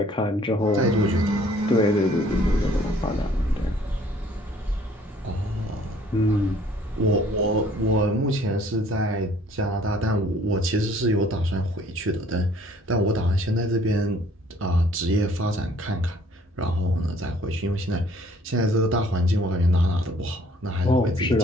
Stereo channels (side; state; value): both; normal; correlation 0.58